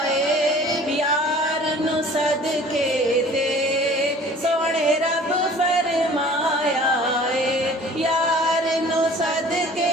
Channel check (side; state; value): both; normal; correlation 0.48